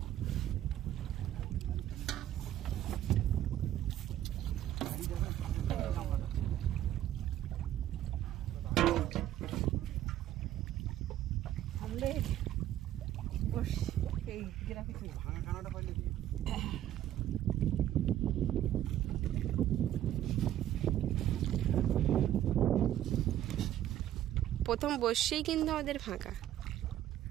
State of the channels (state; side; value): quieter; left; 12.2 dB